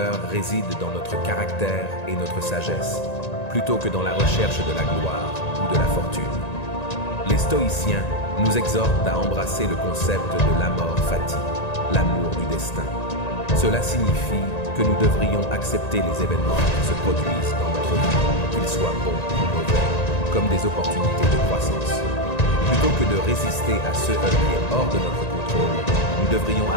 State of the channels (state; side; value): late; right; 1.9 ms